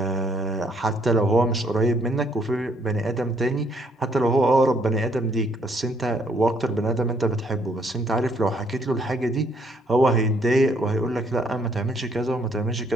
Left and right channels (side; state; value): both; normal; correlation 0.68